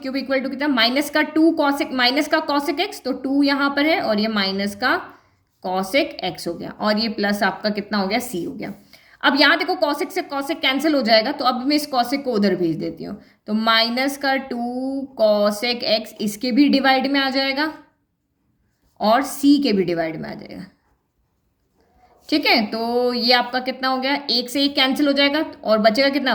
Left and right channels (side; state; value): both; identical; correlation 1.00